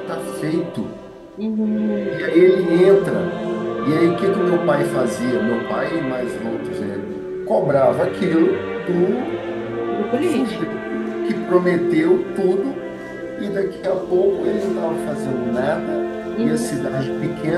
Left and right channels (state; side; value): identical; both; correlation 1.00